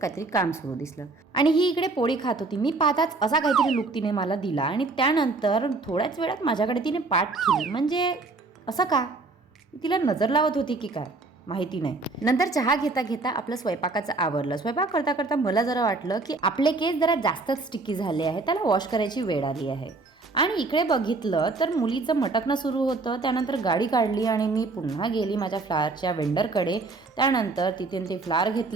काम सुरू दिसलं आणि ही इकडे पोळी खात होती. मी पाहताच असा काहीतरी लुक तिने मला दिला आणि त्यानंतर थोड्याच वेळात माझ्याकडे तिने पाठ केली. म्हणजे असं का? तिला नजर लावत होती की काय माहिती नाही. नंतर चहा घेता घेता आपलं स्वयंपाकाचं आवरलं. स्वयंपाक करता करता मला जरा वाटलं की आपले केस जरा जास्तच स्टिकी झाले आहे, त्याला वॉश करायची वेळ आली आहे. आणि इकडे बघितलं तर मुलीचं मटकणं सुरू होतं. त्यानंतर गाडी काढली आणि मी पुन्हा गेली माझ्या फ्लावरच्या वेंडरकडे. त्यानंतर तिथे ते फ्लावर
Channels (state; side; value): quieter; left; 3.6 dB